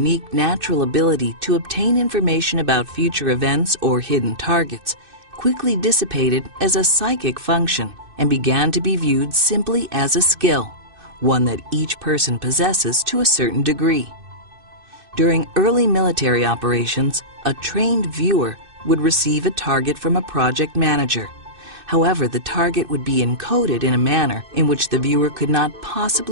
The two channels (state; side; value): late; left; 2.6 ms